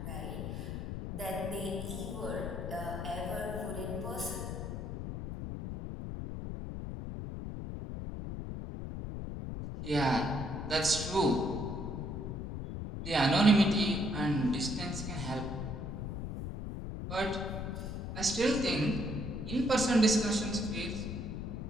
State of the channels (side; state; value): left; noise; rumble, 5 dB below the sound